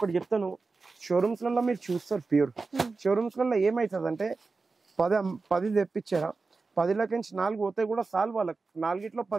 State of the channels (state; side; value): quieter; left; 4.1 dB